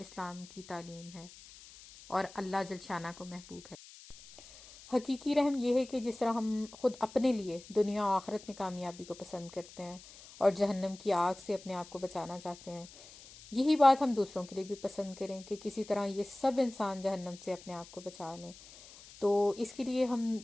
کی تعلیم ہے اور اللہ جل شانہ کو محبوب ہے. حقیقی رحم یہ ہے کہ جس طرح ہم خود اپنے لیے دنیا و آخرت میں کامیابی کو پسند کرتے ہیں اور جہنم کی آگ سے اپنے آپ کو بچانا چاہتے ہیں, یہی بات ہم دوسروں کے لیے بھی پسند کریں کہ کسی طرح یہ سب انسان جہنم سے اپنے آپ کو بچا لیں. تو اس کے لیے ہم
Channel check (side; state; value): left; noise; hiss, 19 dB below the sound